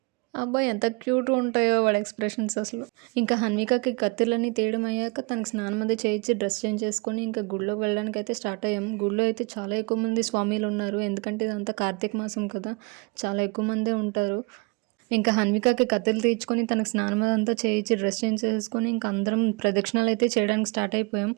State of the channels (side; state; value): left; quieter; 29.1 dB